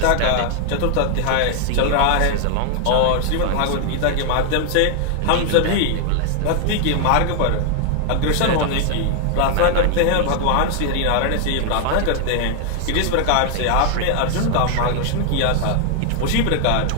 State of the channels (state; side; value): different; both; correlation 0.00